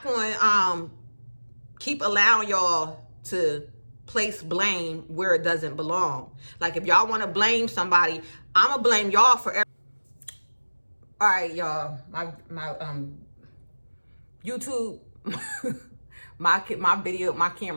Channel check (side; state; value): both; inverted; correlation -1.00